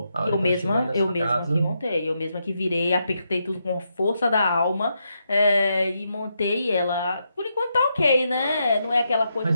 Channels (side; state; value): both; inverted; correlation -0.82